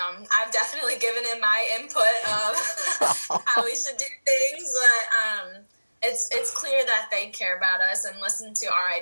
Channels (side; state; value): both; inverted; correlation -1.00